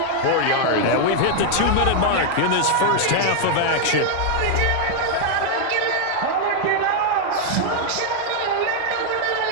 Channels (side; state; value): both; different; correlation 0.00